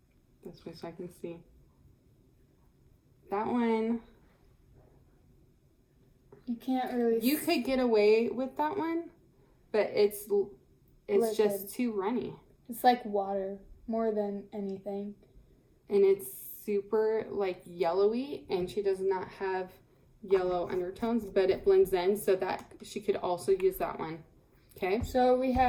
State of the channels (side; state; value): both; identical; correlation 1.00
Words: This way so I can see. That one. You can't really. You could get away with that one, but it's Liquid. just too runny. It's like water more than anything. And it's super like yellowy, and she does not have yellow undertones, but it blends in so that she could also use that one. Okay. So we